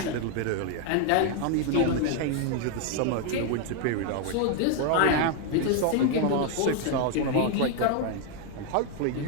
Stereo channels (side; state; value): both; different; correlation 0.00